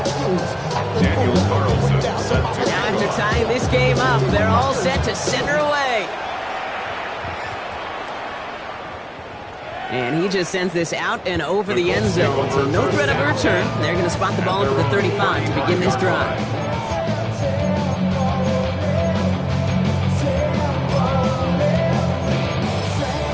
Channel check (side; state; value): both; identical; correlation 1.00